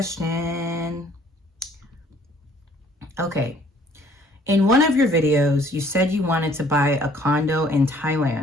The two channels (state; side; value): normal; both; correlation 0.59